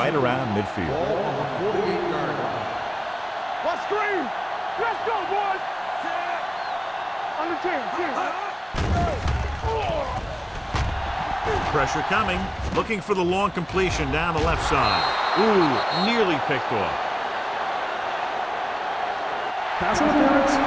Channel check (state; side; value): identical; both; correlation 1.00